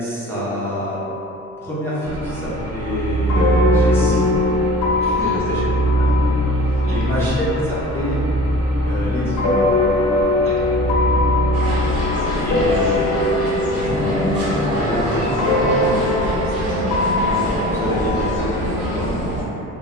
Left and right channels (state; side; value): normal; both; correlation 0.40